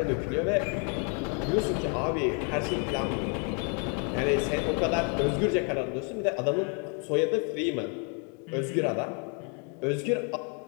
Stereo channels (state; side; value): quieter; right; 38.8 dB